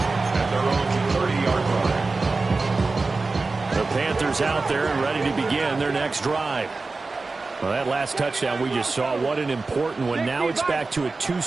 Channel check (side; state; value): left; quieter; 3.7 dB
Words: at their own 30-yard line. The Panthers out there and ready to begin their next drive. Well, that last touchdown we just saw, what an important one. Now it's back to a